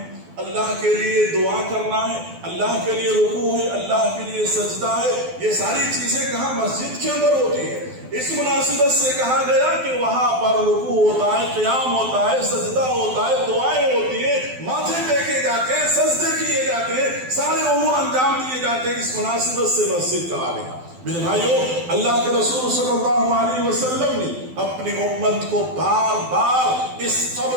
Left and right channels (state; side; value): late; left; 12 ms